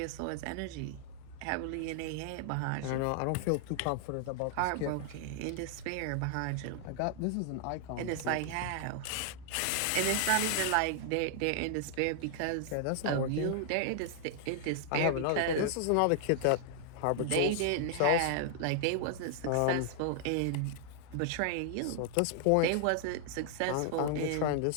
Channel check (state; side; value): different; both; correlation 0.00